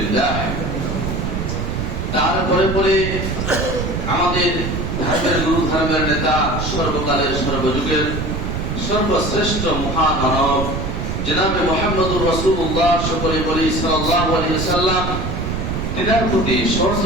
তারপরে পরে আমাদের ধর্মের গুরু, ধর্মের নেতা, সর্বকালের সর্বযুগের সর্বশ্রেষ্ঠ মহামানব জনাবে মুহাম্মদুর রাসূলুল্লাহ সকলে বলি সাল্লাল্লাহু আলাইহি ওয়াসাল্লাম, তিনার প্রতি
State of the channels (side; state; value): right; noise; rumble, 3 dB below the sound